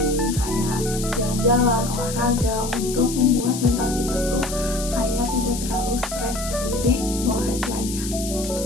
kayak jalan-jalan, olahraga, untuk membuat mental kita tuh kayak tidak terlalu stres gitu. Jadi bawa happy aja.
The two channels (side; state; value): left; noise; hiss, 8 dB below the sound